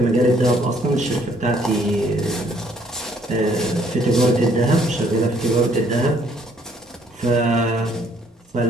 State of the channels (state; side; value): normal; both; correlation 0.65